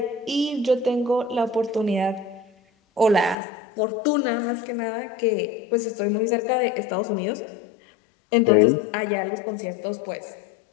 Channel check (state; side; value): drops out; right; at 3.4 s